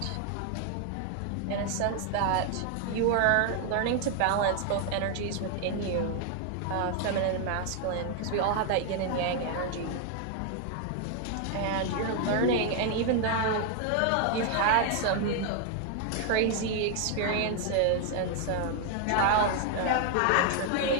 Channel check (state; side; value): different; both; correlation 0.00